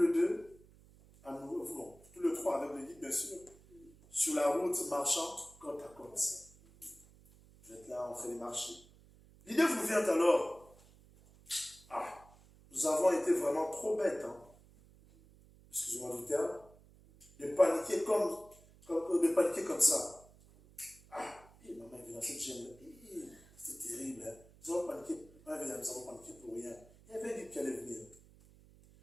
deux, tous les trois avec le guide bien sûr, sur la route marchant côte à côte. Vous êtes là en train de marcher. L'idée vous vient alors, nous avons été vraiment trop bêtes, excusez-moi du terme, de paniquer comme ça. Maman est dans cette gêne. C'est terrible. Nous avons paniqué. Nous avons paniqué pour rien. Il y avait un guide qui allait venir.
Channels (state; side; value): noise; right; hum, 25 dB below the sound